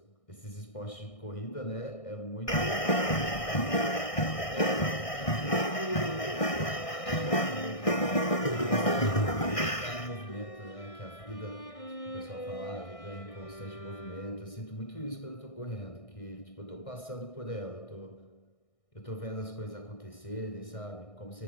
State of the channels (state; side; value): late; right; 1.6 ms